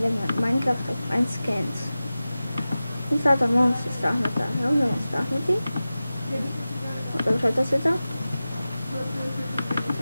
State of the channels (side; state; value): both; inverted; correlation -0.95